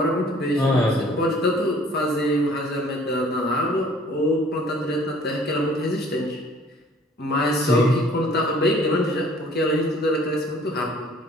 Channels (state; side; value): normal; both; correlation 0.54